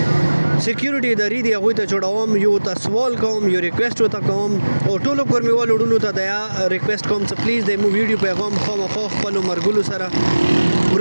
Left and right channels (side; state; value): both; inverted; correlation -1.00